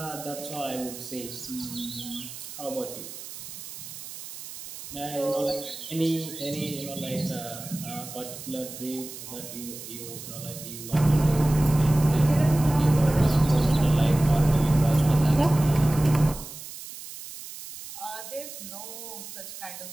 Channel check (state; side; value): noise; right; hiss, 12 dB below the sound